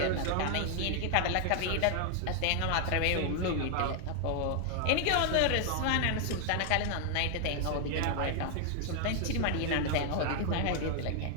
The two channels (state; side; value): different; both; correlation 0.00